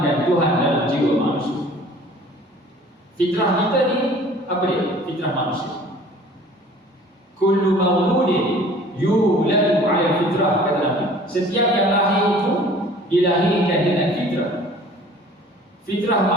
Tuhan dalam jiwa manusia. Fitrah kita ni apa dia? Fitrah manusia. Kullu mauludin yuladu 'ala fitrah, kata Nabi. Setiap yang lahir itu dilahirkan dengan fitrah. Fitrah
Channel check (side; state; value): both; normal; correlation 0.49